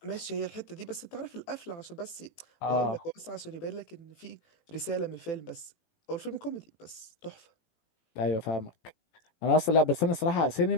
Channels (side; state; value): right; late; 18 ms